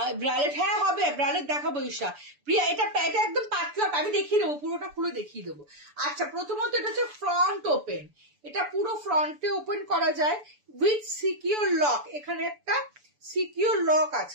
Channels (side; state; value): left; late; 6.9 ms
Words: ব্রালেট, হ্যাঁ হবে, ব্রালেট দেখাবো ঈশা। প্রিয়া, এটা একদম পাতলা, আমি দেখিয়ে দেবো, পুরোটা খুলে দেখিয়ে দেবো। আচ্ছা, প্রথমত এটা হচ্ছে ফ্রন্ট ওপেন, এটা পুরো ফ্রন্টে ওপেন করা যায় উইথ সিকিউর লক। এখানে একটা সিকিউর লক